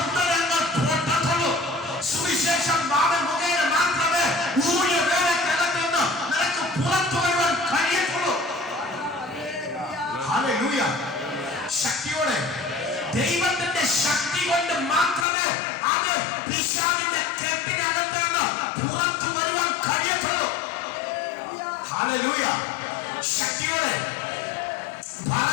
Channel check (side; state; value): right; drops out; at 15.2 s